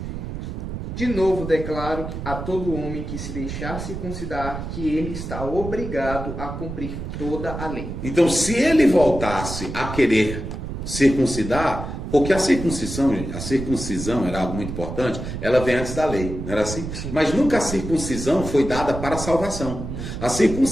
De novo declaro a todo homem que se deixar circuncidar que ele está obrigado a cumprir toda a lei. Então, se ele voltasse a querer circuncidar, porque a circuncisão era algo muito importante, ela vem antes da lei, não era assim? Sim. Mas nunca a circuncisão foi dada para a salvação. A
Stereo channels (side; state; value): right; noise; rumble, 7 dB below the sound